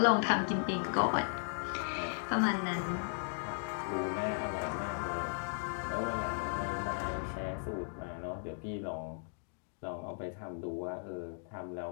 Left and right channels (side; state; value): right; silent; digital silence